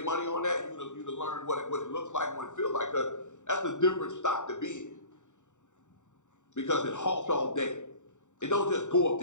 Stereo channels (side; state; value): right; late; 0.85 ms